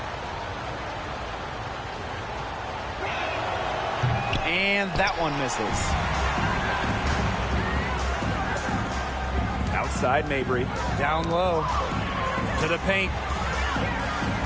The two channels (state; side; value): identical; both; correlation 1.00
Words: And that one misses. Outside Mabry. Down low. To the paint.